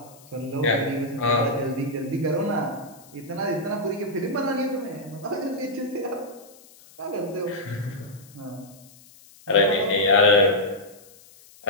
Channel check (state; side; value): noise; left; hiss, 24 dB below the sound